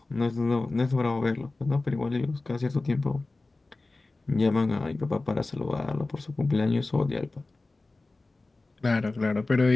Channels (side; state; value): right; quieter; 3.2 dB